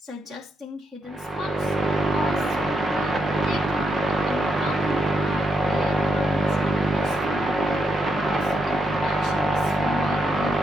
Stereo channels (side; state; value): both; normal; correlation 0.81